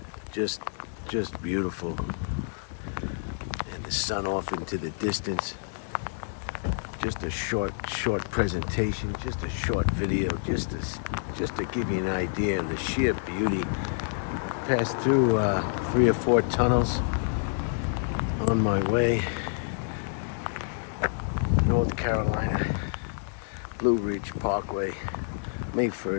Just beautiful. And the sun off into the distance. Just a short presentation, just a short video, just to give you an idea of the sheer beauty. I've passed through 3 or 4 tunnels on my way, North Carolina, Blue Ridge Parkway, May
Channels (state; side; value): silent; right; 59 dB below the other